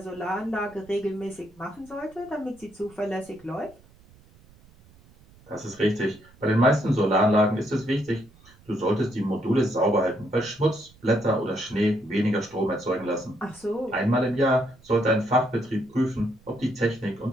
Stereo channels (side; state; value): right; noise; rumble, 27 dB below the sound